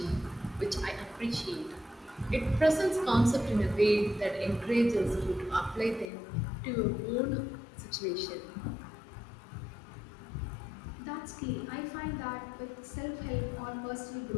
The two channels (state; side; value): drops out; right; at 6.1 s